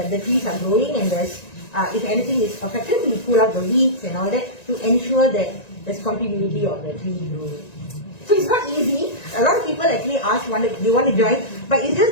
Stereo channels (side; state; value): right; late; 1.9 ms